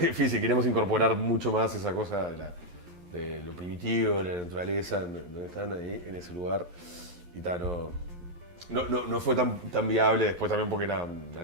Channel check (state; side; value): late; left; 11 ms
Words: Queríamos incorporar mucho más esa cosa de lo primitivo, de la naturaleza, donde están ahí, en ese lugar. Y no fue tan viable después también porque era una